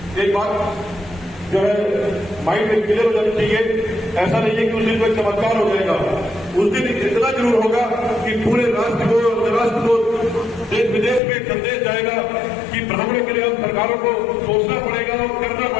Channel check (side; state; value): right; drops out; at 11.2 s